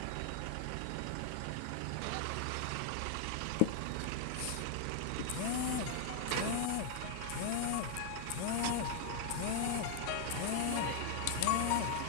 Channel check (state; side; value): different; both; correlation 0.00